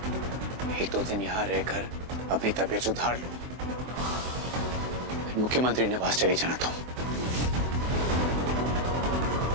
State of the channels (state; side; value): late; left; 23 ms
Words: एक दो दिन यहां रहकर अपनी तबीयत सुधार लो, मुख्यमंत्री निवास चली जाना तुम।